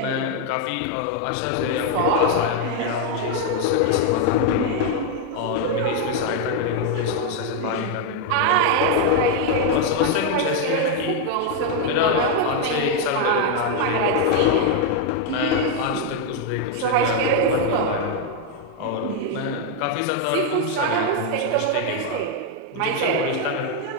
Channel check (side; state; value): both; different; correlation 0.01